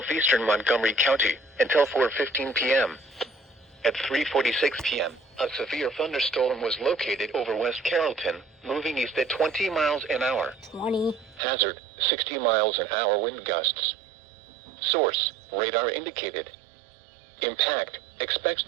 Montgomery County, until 4:15 p.m. At 3:46 p.m., a severe thunderstorm was located over West Carrollton, moving east at 20 miles an hour. 20. Hazard, 60 miles an hour wind gusts. Source, radar indicated. Impact, expects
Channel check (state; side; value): drops out; left; at 11.4 s